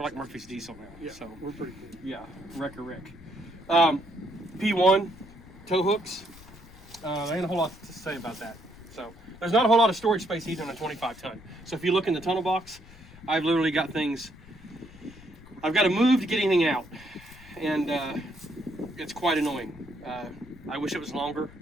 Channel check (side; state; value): left; noise; rumble, 21 dB below the sound